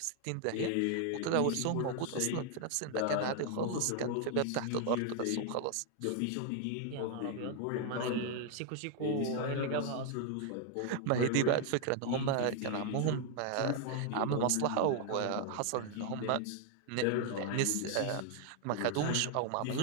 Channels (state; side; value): different; both; correlation 0.00